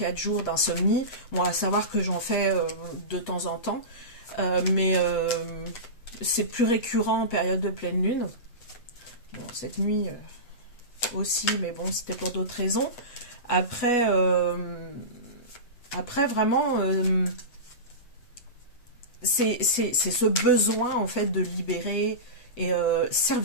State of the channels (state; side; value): late; right; 8.2 ms